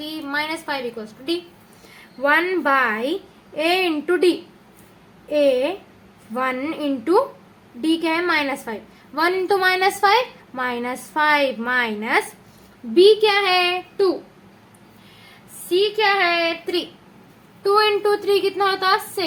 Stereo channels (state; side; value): identical; both; correlation 1.00